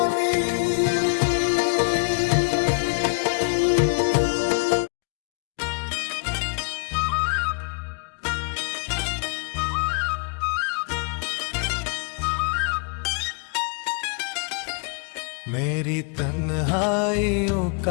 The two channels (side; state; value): right; quieter; 36.7 dB